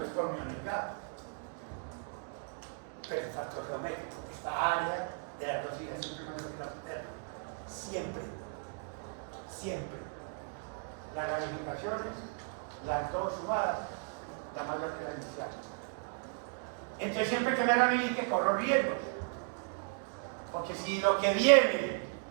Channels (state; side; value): silent; left; 54 dB below the other